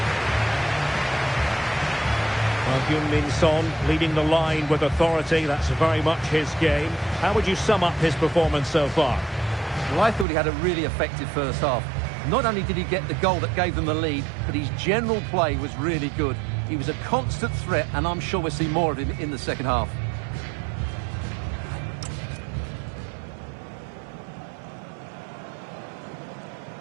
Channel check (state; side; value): drops out; left; at 10.2 s